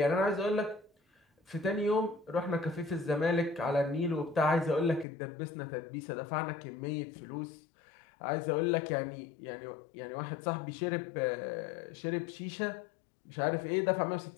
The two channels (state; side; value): drops out; right; at 5.1 s